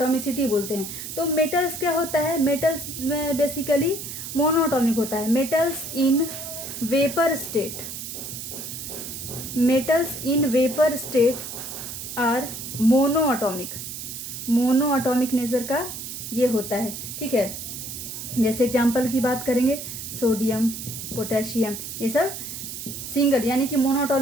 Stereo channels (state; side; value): noise; right; hiss, 8 dB below the sound